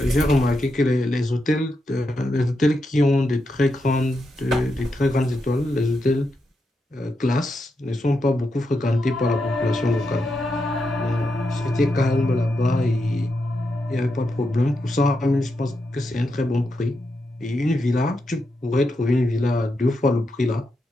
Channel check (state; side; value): normal; both; correlation 0.85